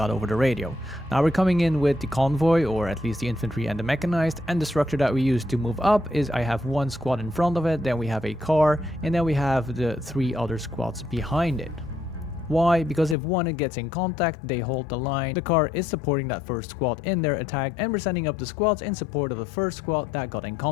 over the radio. Now we're coming in with the convoy, or at least the infantry and the mechanized, and the structure that we use to move up is I have one squad in front of it, then we have a car, and then we have the 3 other squads behind it. Why? Because if one gets in contact, they hold the line. The car is supporting that first squad in their attack, and we're sending up the squads in support of the first squad that got in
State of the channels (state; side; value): drops out; right; at 13.2 s